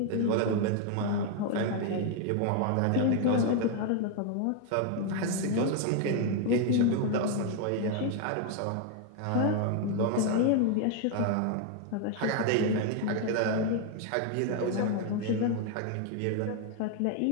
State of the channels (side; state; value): both; different; correlation 0.00